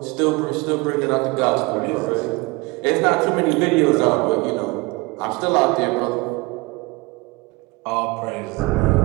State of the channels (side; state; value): left; quieter; 24.1 dB